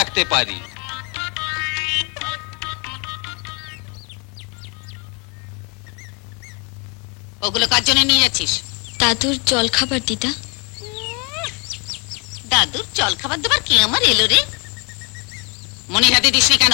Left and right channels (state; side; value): quieter; right; 32.3 dB